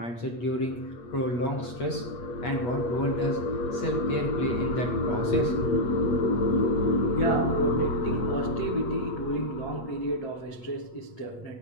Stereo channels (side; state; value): right; late; 8.3 ms